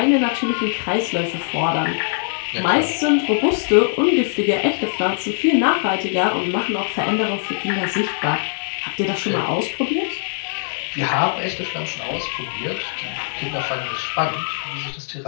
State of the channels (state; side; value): silent; right; digital silence